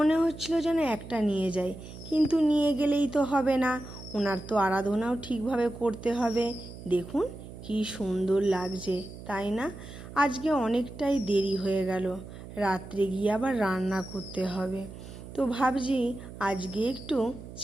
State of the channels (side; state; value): right; noise; hum, 14 dB below the sound